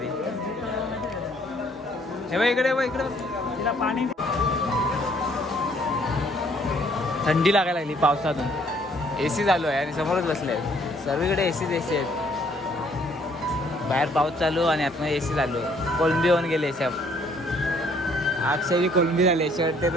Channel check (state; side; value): normal; both; correlation 0.63